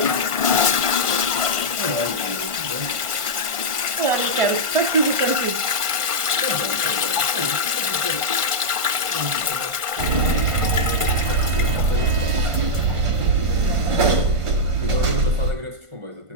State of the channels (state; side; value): late; left; 1.5 ms